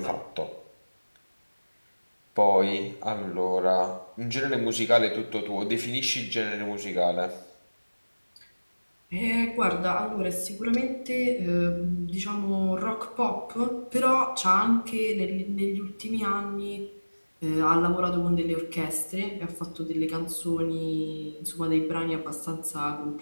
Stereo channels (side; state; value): both; inverted; correlation -1.00